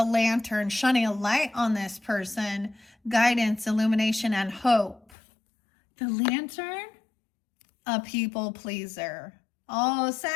lantern, shining a light on this person. Guidance, illumination, and hope. The lantern? A people pleaser. Oh,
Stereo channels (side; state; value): right; drops out; at 5.1 s